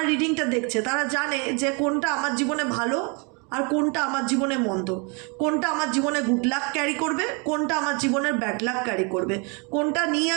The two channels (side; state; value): left; quieter; 32.9 dB